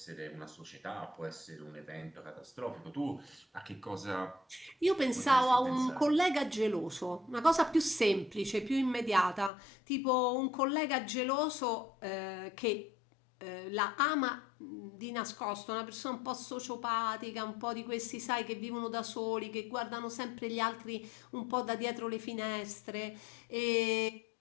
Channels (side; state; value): right; drops out; at 9.5 s